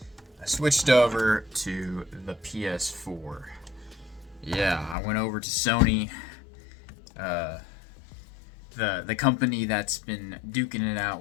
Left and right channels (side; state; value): right; drops out; at 5.0 s